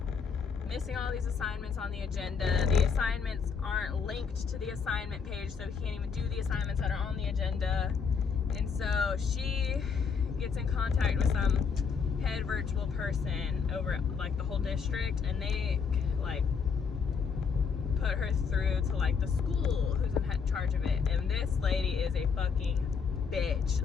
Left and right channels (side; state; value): right; quieter; 5.9 dB